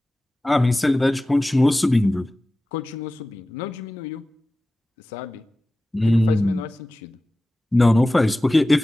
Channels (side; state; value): both; normal; correlation 0.96